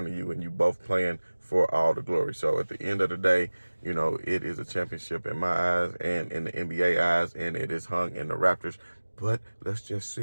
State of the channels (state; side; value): inverted; both; correlation -1.00